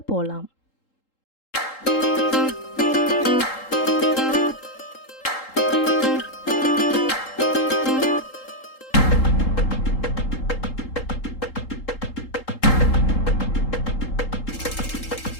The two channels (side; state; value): right; late; 3.8 ms